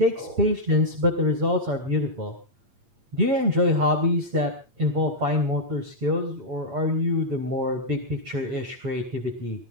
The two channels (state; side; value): late; left; 8.7 ms